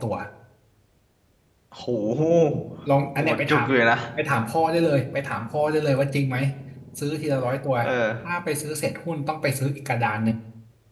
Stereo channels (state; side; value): identical; both; correlation 1.00